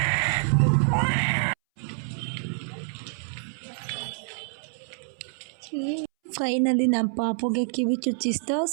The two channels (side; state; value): left; silent; 60 dB below the other